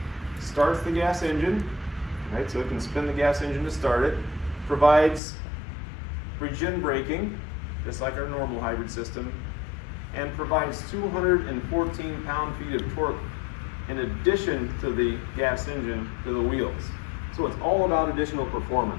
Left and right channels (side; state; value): right; drops out; at 5.2 s